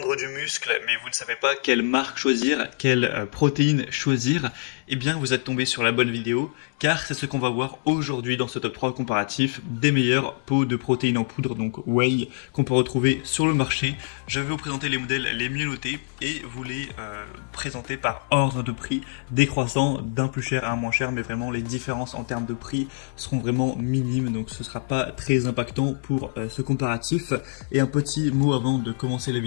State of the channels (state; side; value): silent; right; digital silence